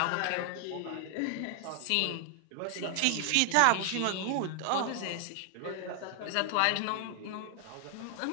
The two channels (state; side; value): different; both; correlation 0.00